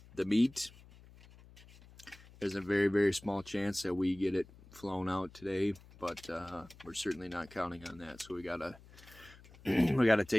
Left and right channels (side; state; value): left; noise; hum, 22 dB below the sound